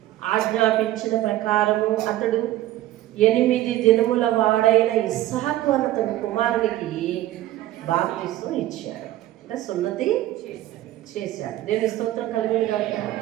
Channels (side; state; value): left; quieter; 14.7 dB